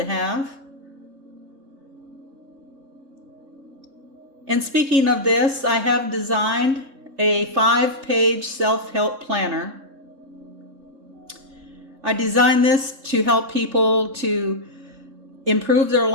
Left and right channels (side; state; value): left; late; 3.7 ms